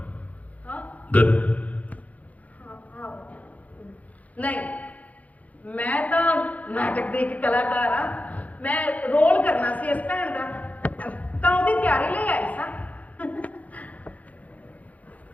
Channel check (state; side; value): late; right; 0.072 ms